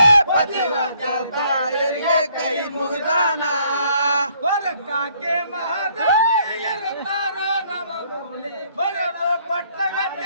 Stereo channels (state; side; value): inverted; both; correlation -0.65